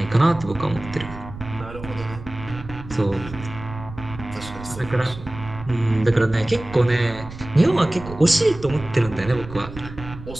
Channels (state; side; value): noise; right; rumble, 13 dB below the sound